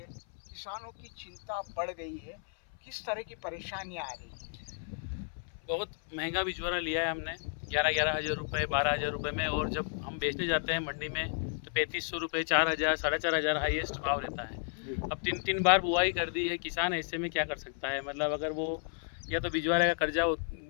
किसानों की चिंता बढ़ गई है, किस तरह की परेशानियां आ रही हैं? बहुत महंगा बिचौरा लिया है हमने 11,000 रुपये 12,000 रुपये में, और जब हम बेचने जाते हैं मंडी में तो 3,500 रुपये 4,000 4,500 हाईएस्ट भाव रहता है। अब 3 बार बुआई कर दी है, किसान ऐसे में क्या कर सकता है। मतलब अगर वो या तो बिचौरे का कर्जा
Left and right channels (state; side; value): silent; right; 55 dB below the other